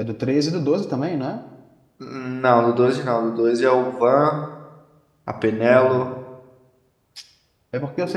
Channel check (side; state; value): both; identical; correlation 1.00